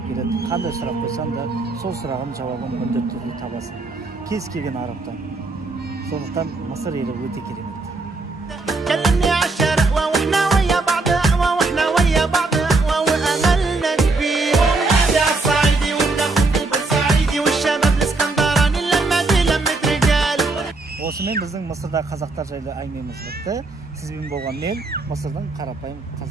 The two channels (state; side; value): quieter; left; 3.4 dB